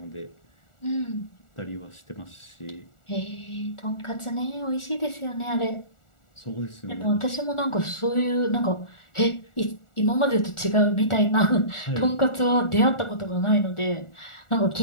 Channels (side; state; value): right; late; 1.4 ms